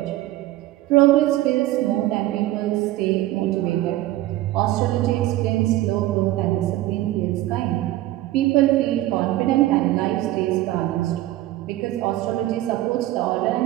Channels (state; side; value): quieter; left; 15.9 dB